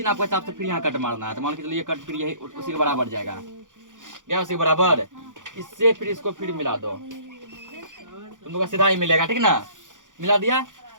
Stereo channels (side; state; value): left; late; 0.87 ms